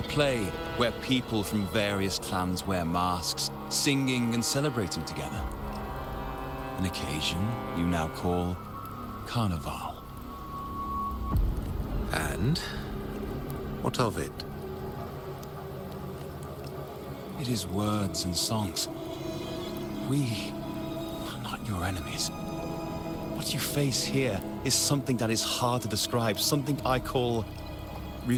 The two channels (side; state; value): both; identical; correlation 1.00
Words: play where people from various clans wear masks, singing and celebrating together. An occasion you now call Carnival. And what of it? It is words and songs. We are not your enemies, What you face here is something that is hard to describe, something I call